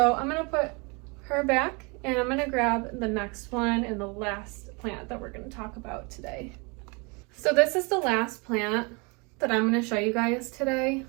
I'm gonna put her back, and I'm gonna grab the next one and the last plant that we're gonna talk about today. So this is the last plant that I'm gonna show you guys today.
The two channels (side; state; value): left; quieter; 30.1 dB